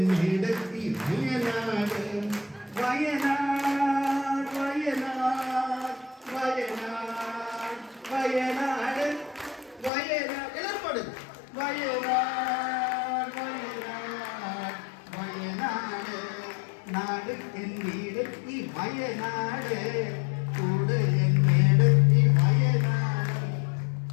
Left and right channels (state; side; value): drops out; right; at 9.9 s